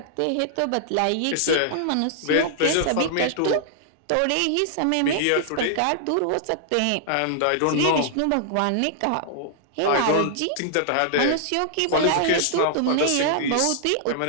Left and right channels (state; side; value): different; both; correlation -0.01